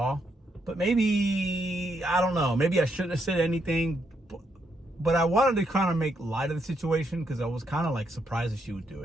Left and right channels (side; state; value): both; normal; correlation 0.77